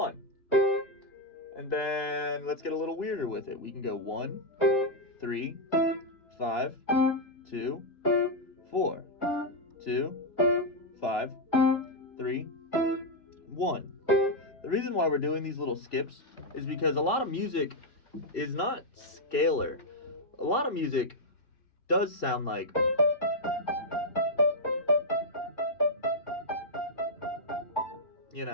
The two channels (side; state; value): right; late; 2.9 ms